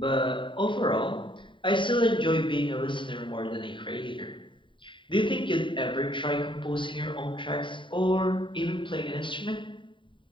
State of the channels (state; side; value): late; right; 0.24 ms